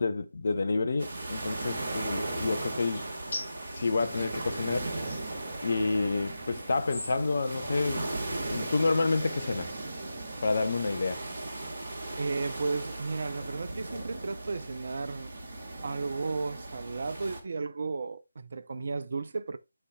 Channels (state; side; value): inverted; both; correlation -0.91